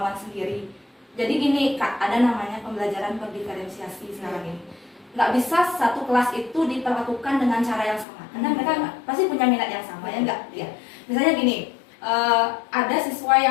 sendiri. Jadi gini Kak, ada namanya pembelajaran berdiferensiasi sekarang ini. Nggak bisa satu kelas itu diperlakukan dengan cara yang sama, karena mereka pasti punya minat yang sama, ya enggak? Ya. Misalnya gini, ada siswa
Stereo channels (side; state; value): right; drops out; at 8.1 s